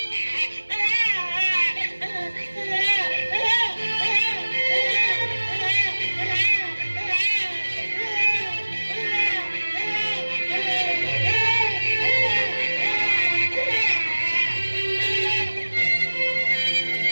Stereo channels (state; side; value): inverted; both; correlation -1.00